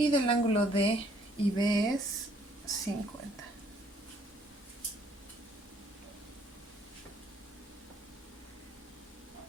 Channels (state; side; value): normal; both; correlation 0.64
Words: del ángulo D y B es 50.